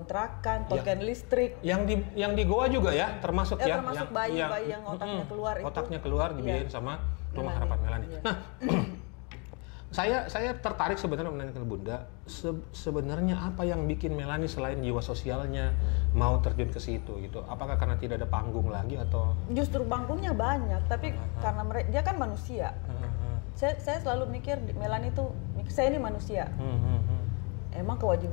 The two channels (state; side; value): quieter; right; 33.8 dB